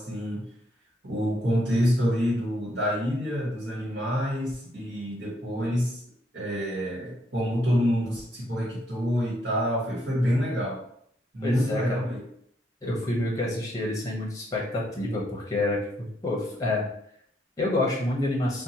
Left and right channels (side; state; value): both; normal; correlation 0.73